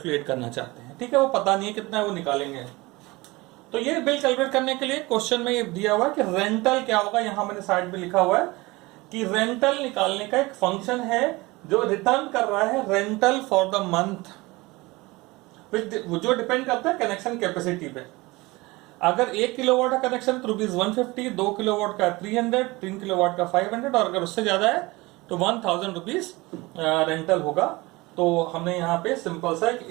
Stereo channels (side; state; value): left; quieter; 22.3 dB